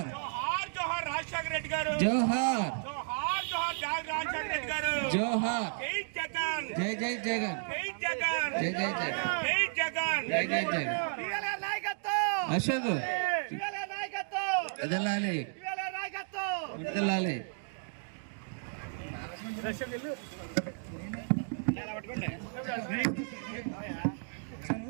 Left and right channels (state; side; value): silent; left; digital silence